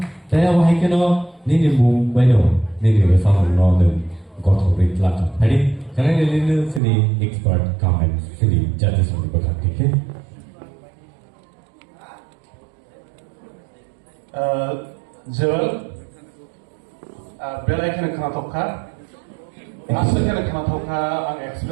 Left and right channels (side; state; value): left; drops out; at 6.8 s